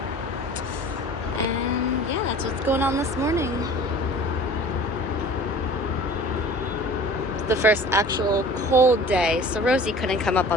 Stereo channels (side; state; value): both; normal; correlation 0.44